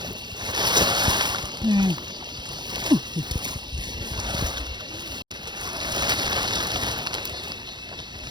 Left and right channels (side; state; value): left; late; 0.21 ms